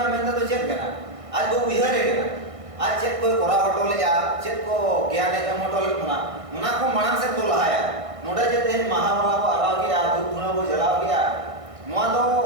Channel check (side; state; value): left; late; 1.6 ms